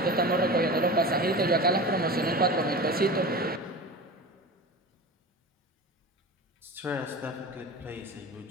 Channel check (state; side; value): normal; both; correlation 0.31